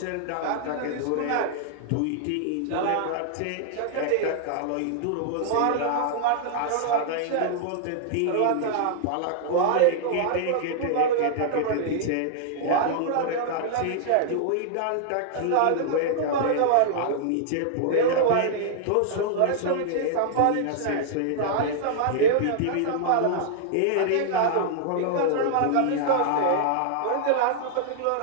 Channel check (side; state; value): both; different; correlation -0.01